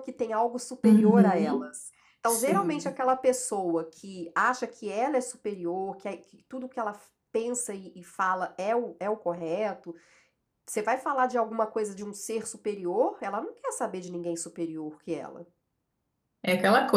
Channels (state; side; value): identical; both; correlation 1.00